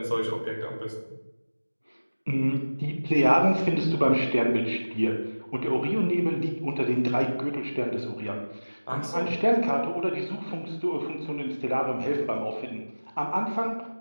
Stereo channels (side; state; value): both; inverted; correlation -1.00